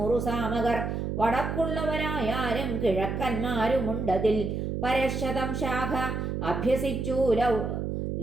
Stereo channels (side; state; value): right; noise; hum, 2 dB below the sound